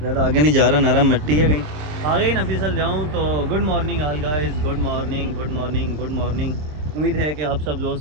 आगे नहीं जा रहा, नरम मिट्टी है, कहीं आगे ही ना फिसल जाऊँ। तो good morning all guys, good morning good morning good morning. उम्मीद है कि आप सब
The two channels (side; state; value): left; late; 26 ms